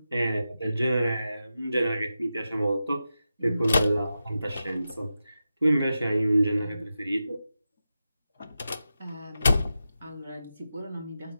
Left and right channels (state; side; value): inverted; both; correlation -0.91